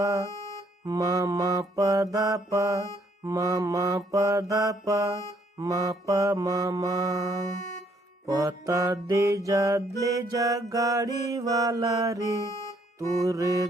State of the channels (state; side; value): normal; both; correlation 0.67